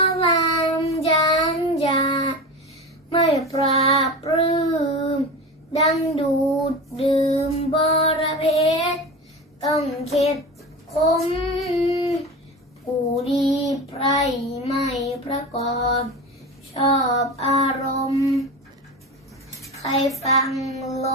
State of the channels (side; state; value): both; normal; correlation 0.27